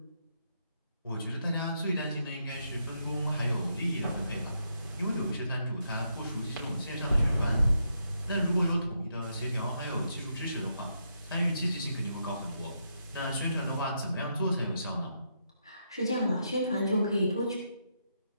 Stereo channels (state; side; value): inverted; both; correlation -0.80